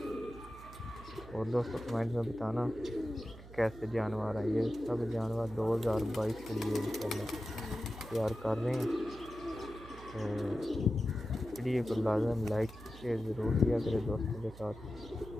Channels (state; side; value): noise; right; hum, 16 dB below the sound